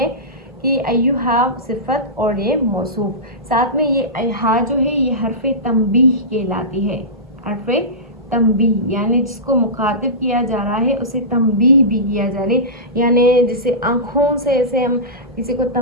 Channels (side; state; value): both; normal; correlation -0.18